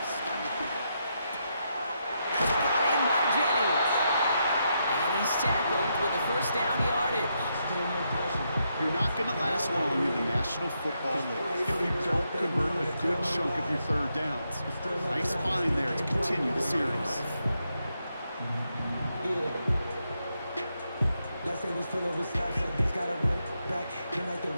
That's brought in by Jennings. And he's tackled with a 1st down yardage. You're not going to last long in the National Football League if you don't convert a good chunk of your 3rd downs. Nice find there to continue the series.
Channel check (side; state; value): both; inverted; correlation -0.81